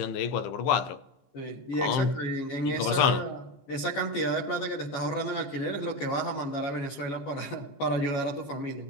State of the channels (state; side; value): late; right; 14 ms